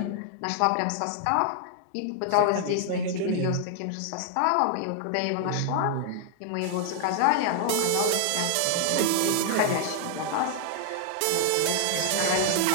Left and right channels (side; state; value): both; different; correlation 0.00